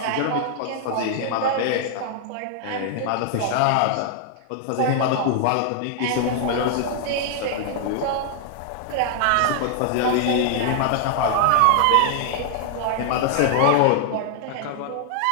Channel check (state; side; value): different; both; correlation -0.01